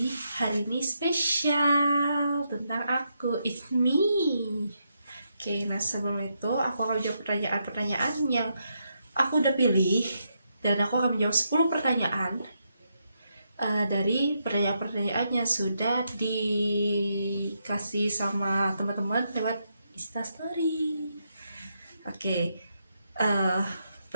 hari ini spesial tentang aku, it's me. Oke, nah sebelum itu aku akan menjawab pertanyaan-pertanyaan yang aku udah pilih, dan aku akan menjawab 10 pertanyaan dari pertanyaan-pertanyaan yang sudah dikasih sama teman-teman lewat Instastory. Oke,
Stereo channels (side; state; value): both; inverted; correlation -0.81